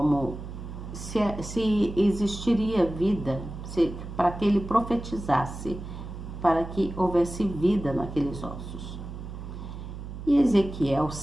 se existiria vida, para que ele profetizasse, para que houvesse vida naqueles ossos. E Ezequiel,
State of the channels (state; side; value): noise; right; hum, 10 dB below the sound